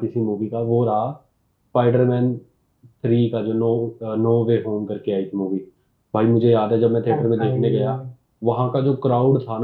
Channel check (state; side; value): identical; both; correlation 1.00